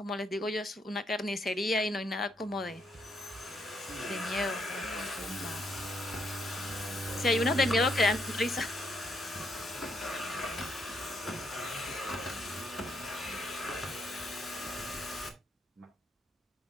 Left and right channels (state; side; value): normal; both; correlation 0.75